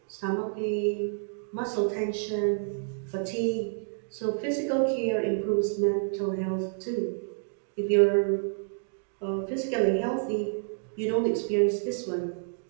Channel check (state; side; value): silent; left; digital silence